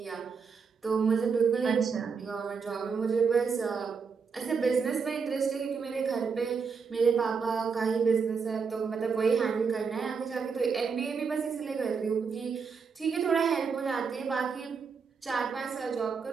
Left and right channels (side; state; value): left; quieter; 5.6 dB